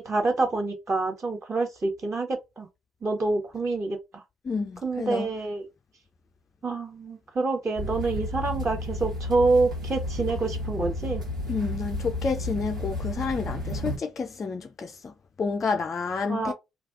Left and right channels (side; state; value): both; normal; correlation 0.76